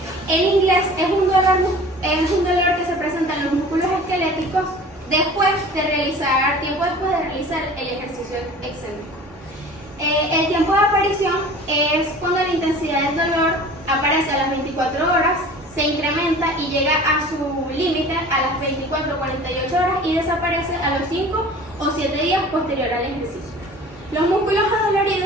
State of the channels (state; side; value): normal; both; correlation 0.43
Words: en inglés es un dolor que se presenta en los músculos esqueléticos tiempo después de realizar el ejercicio excéntrico. El tiempo de aparición es cuando la intensidad del dolor aparece a las 24 horas, se incrementa y llega a su límite a las 24 o 48 horas y desaparece a los 5 o 7 días posterior al ejercicio. Los músculos